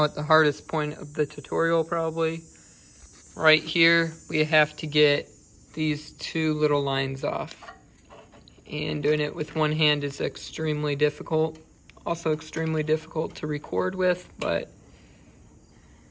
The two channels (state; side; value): identical; both; correlation 1.00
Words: at the hardest point of the tutorial probably. Right here, we have to get these two little lines off. And doing it with one hand is extremely difficult. Also extremely difficult to record with, but